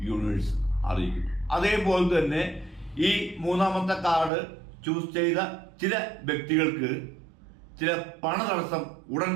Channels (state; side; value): drops out; left; at 4.3 s